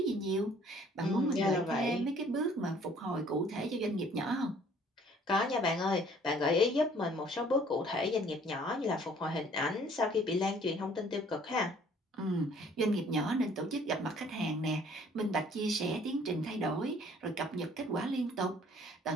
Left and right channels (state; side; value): normal; both; correlation 0.57